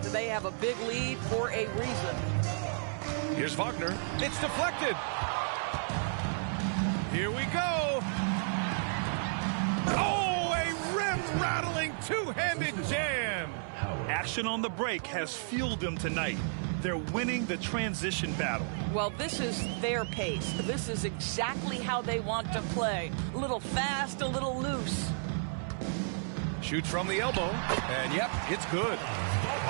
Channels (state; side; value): silent; left; 56 dB below the other